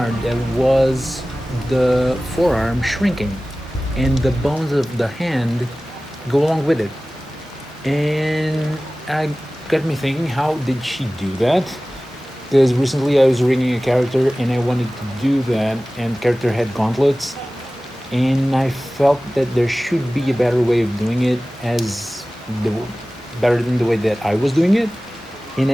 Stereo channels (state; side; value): normal; both; correlation 0.97